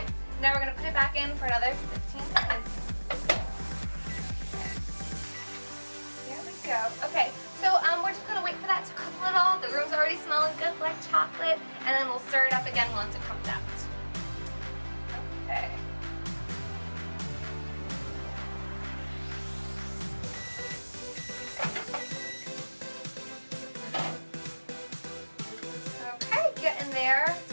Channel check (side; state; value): both; inverted; correlation -1.00